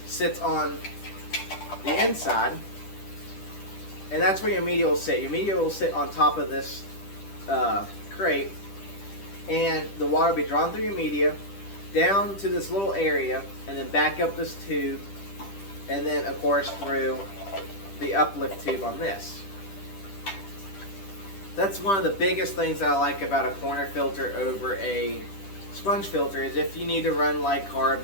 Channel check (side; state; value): right; late; 10 ms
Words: sits on the inside, and that's where your media will sit. Your media will sit on top of this crate, and the water will be drawn through your media down to this little area, and then back up this tube, and then of course through the uplift tube on this. That's one of the biggest things that I like about a corner filter over a sponge filter, is if you need to run like